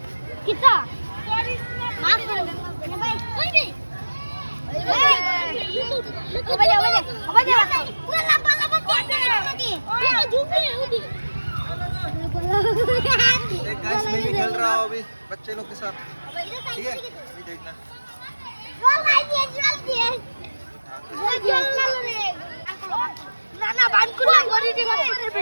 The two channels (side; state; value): both; inverted; correlation -1.00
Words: কিতা মাছ ধরে ভাই কই রে पूरा लंबा लंबा नाকি पूरा झूमे होती एक गाइस मैं भी खेल रहा हूँ अभी बच्चे लोग के साथ ठीक है अभी देखना ना ना बांध को ना गोरी दे